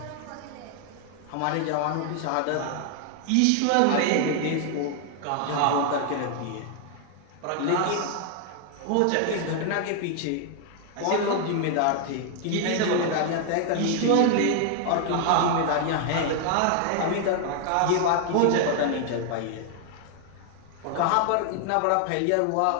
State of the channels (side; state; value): both; different; correlation 0.00